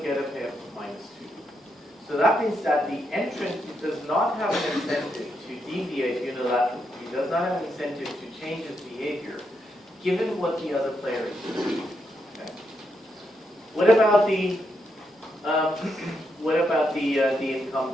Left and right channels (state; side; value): normal; both; correlation 0.81